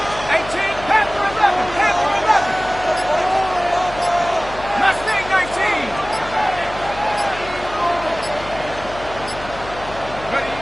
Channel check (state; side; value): noise; left; hum, 14 dB below the sound